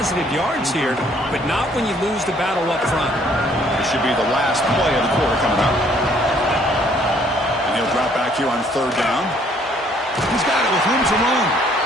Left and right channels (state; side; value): normal; both; correlation 0.63